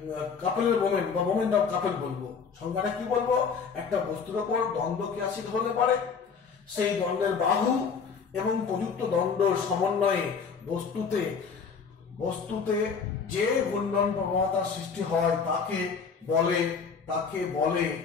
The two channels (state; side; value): quieter; right; 5.8 dB